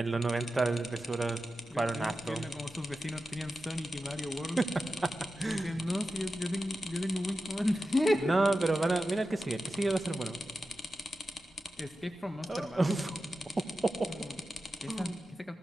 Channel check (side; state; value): both; normal; correlation 0.92